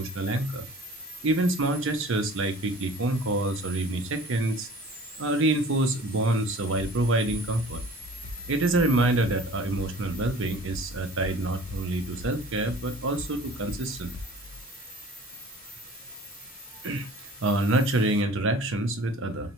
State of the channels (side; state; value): both; normal; correlation 0.46